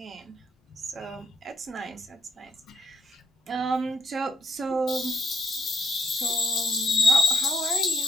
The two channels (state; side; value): normal; both; correlation 0.68